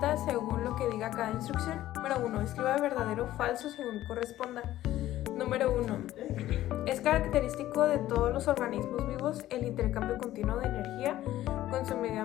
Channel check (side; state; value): right; quieter; 14.2 dB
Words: según lo que diga cada instrucción. Número 1. Escriba verdadero o falso según corresponda. Número 1. Es característico de todos los organismos vivos el intercambio continuo de energía con su medio